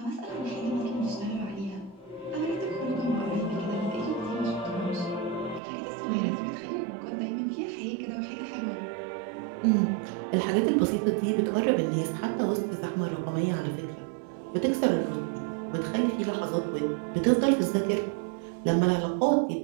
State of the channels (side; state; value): left; drops out; at 5.6 s